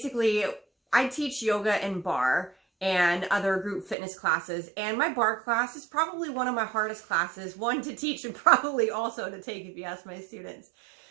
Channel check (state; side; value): drops out; left; at 4.0 s